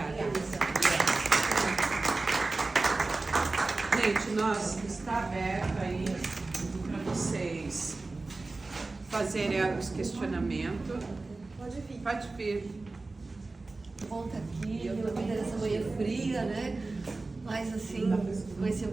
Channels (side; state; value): left; quieter; 3.4 dB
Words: Gente, está aberto aí para vocês fazerem os questionamentos. Pode vir. Pode vir. Bom estar aqui, nessa manhã fria, né? Mas assim, com esse